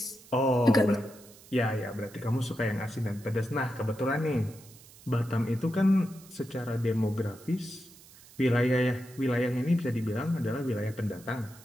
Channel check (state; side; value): noise; right; hiss, 22 dB below the sound